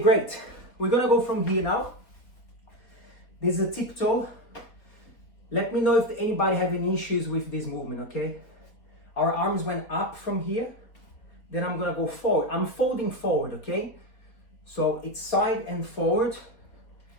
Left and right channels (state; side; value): late; right; 4.0 ms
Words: We're going to go from here now. This is a tiptoe. Let me know if anybody have any issues with this movement, okay? Our arms went up from here. Then I'm going to go forward. I'm folding forward, okay? So it's side and forward.